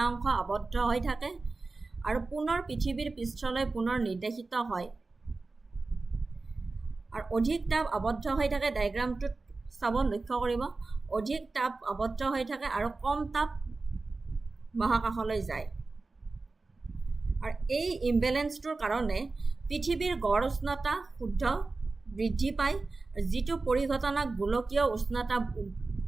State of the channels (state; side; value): quieter; left; 3.7 dB